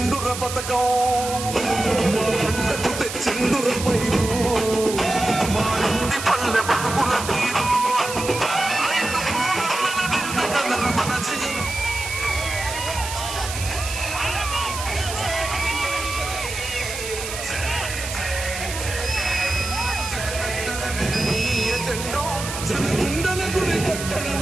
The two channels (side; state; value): right; noise; hiss, 7 dB below the sound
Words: పథకం మా పంటకు తెచ్చిండుర పైరు మా ఇంటి పల్లె బతుకుల తీరు మన జనగుండల గుడి